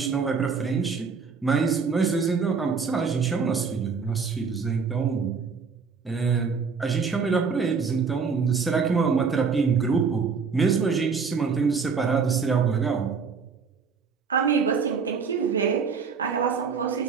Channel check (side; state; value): left; quieter; 5.5 dB